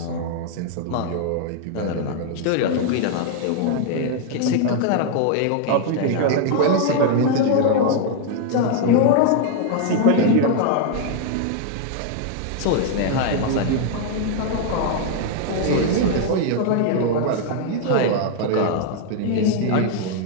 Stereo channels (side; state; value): both; different; correlation 0.00